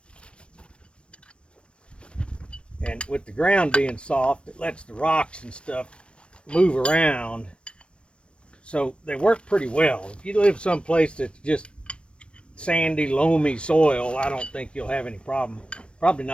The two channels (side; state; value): right; late; 0.058 ms